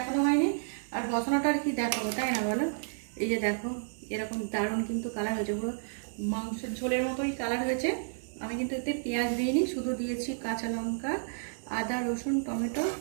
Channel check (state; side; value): silent; left; digital silence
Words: হয়নি, আর বসানোটা আর কি দেখাবো, তাই না বলো? এই যে দেখো এরকম দারুণ কিন্তু কালার হয়েছে, পুরো মাংসের ঝোলের মতোই কালার হয়েছে। আমি কিন্তু এতে পেঁয়াজ দিইনি, শুধু দিয়েছি কাঁচা লঙ্কা, আদা, রসুন, টমেটো